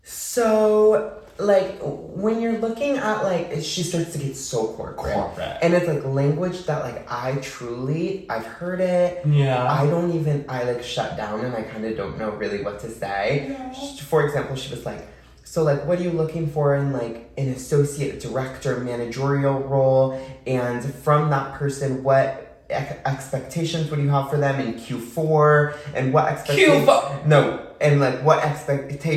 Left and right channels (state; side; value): identical; both; correlation 1.00